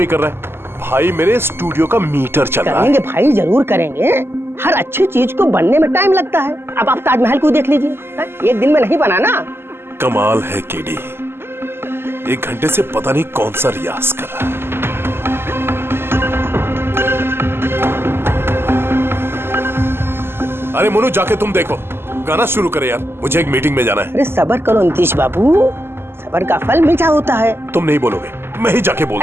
कर रहा है। भाई मेरे स्टूडियो का मीटर चल रहा है। करेंगे भाई, जरूर करेंगे। हर अच्छी चीज को बनने में टाइम लगता है। अब आप ताजमहल को देख लीजिए, एक दिन में नहीं बना ना। कमाल है केडी, 1 घंटे से पता नहीं कौन सा रियाज कर रहा है। अरे मनु, जाके तुम देखो, गाना शुरू करे यार, मुझे एक मीटिंग में जाना है। अरे सब्र करो नीतीश बाबू, सब्र का फल मीठा होता है। तुम नहीं बोलोगे, मैं ही जाके बोल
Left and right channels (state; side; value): late; left; 0.12 ms